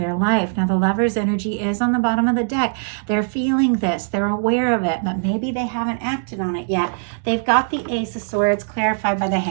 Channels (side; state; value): left; silent; digital silence